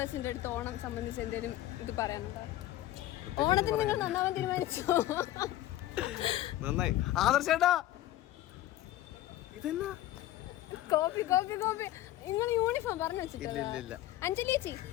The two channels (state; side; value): quieter; right; 14.4 dB